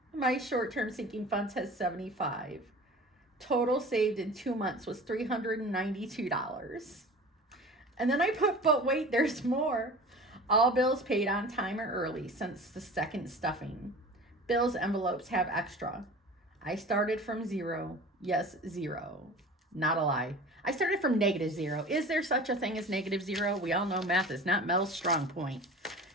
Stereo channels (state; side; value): normal; both; correlation 0.39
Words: My short-term sinking funds has $75. Total saved in 2 months was $392. And then I put, but wait, there's more. All bills paid on time or early since the second stuffing. Bills envelopes have extra. I started from 0. Yes, 0. Not a lie. I started from -0. Is there such a thing as -0? We all know math is not Mel's strong point.